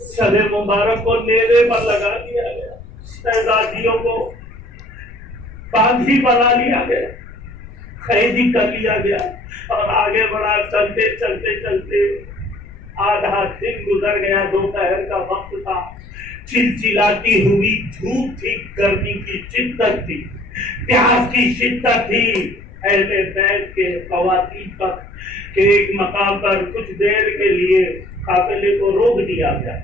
سر مبارک کو نیزے پر لگا دیا گیا. شہزادیوں کو باندھی بنا لیا گیا، قیدی کر لیا گیا اور آگے بڑھا. چلتے چلتے چلتے آدھا دن گزر گیا. دوپہر کا وقت تھا. چلچلاتی ہوئی دھوپ تھی، گرمی کی شدت تھی، پیاس کی شدت تھی. اہل بیت کے خواتین پر کہ ایک مقام پر کچھ دیر کے لیے قافلے کو روک دیا گیا.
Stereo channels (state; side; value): noise; left; rumble, 17 dB below the sound